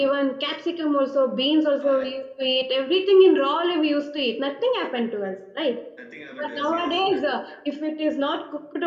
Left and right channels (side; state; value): both; identical; correlation 1.00